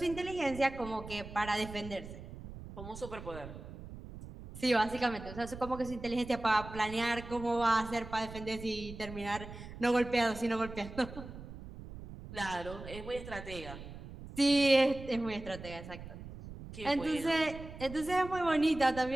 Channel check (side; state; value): right; noise; rumble, 13 dB below the sound